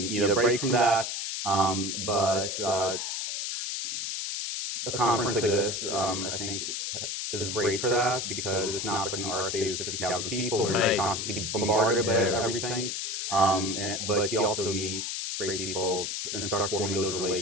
a break from that. But a conference like this, I think, is great for that, because it's not like an RSA with 50,000 people where you're just constantly bombarded by everything. But you also meet great people and start forming those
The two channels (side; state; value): left; noise; hiss, 3 dB below the sound